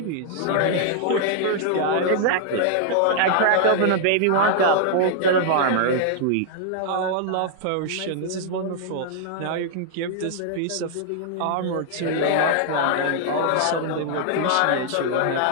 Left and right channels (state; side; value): different; both; correlation -0.01